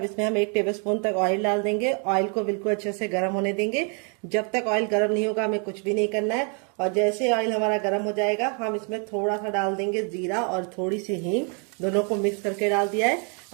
इसमें हम 1 टेबलस्पून तक ऑयल डाल देंगे। ऑयल को बिल्कुल अच्छे से गर्म होने देंगे। जब तक ऑयल गर्म नहीं होगा हमें कुछ भी नहीं करना है। और जैसे ऑयल हमारा गर्म हो जाएगा हम इसमें थोड़ा सा डाल देंगे जीरा और थोड़ी सी हींग, दोनों को मिक्स करके डाल दिया है।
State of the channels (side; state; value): left; quieter; 38.1 dB